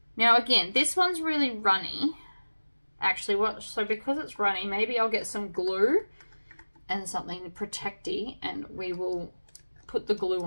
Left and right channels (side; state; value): both; inverted; correlation -1.00